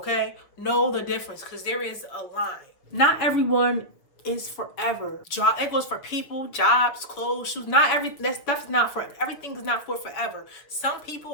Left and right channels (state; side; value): late; right; 6.7 ms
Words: Know the difference because there is a line. Not everyone is forever. It goes for people, jobs, clothes, shoes. Not that stuff's not for everything is not for forever. Some